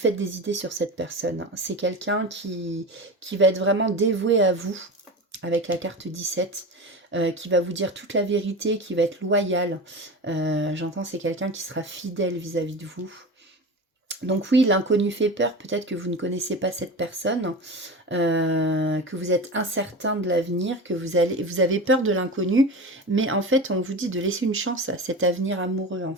des idées sur cette personne. C'est quelqu'un qui va être vraiment dévoué à vous, avec la carte 17, qui va vous dire toute la vérité, qui va être loyal. J'entends, c'est quelqu'un qui sera fidèle vis-à-vis de vous. Donc oui, l'inconnu fait peur, peut-être que vous ne connaissez pas cette personne, que vous êtes incertain de l'avenir, que vous avez peur de l'inconnu, mais en fait, on vous dit de laisser une chance à cet avenir amoureux, en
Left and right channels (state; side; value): normal; both; correlation 0.28